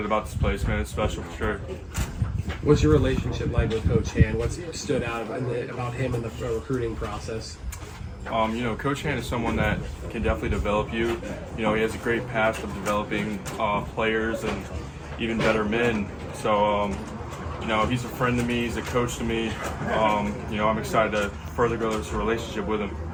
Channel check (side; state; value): both; identical; correlation 1.00